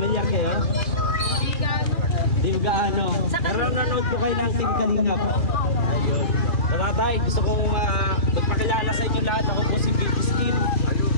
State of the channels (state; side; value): late; right; 2.4 ms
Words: kayo? Di gaano. Pero nanood po kayo ng Team Kalingap. Ayun. Tatay, gusto kong magpakilala sa inyo lahat. Ako po si